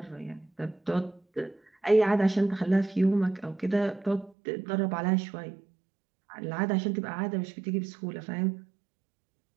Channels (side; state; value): left; drops out; at 4.4 s